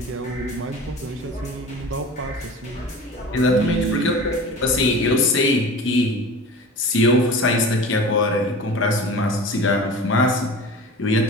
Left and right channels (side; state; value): both; normal; correlation 0.36